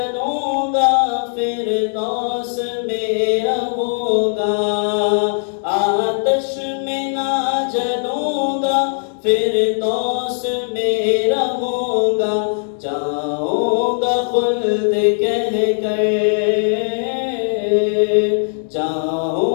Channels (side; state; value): right; silent; digital silence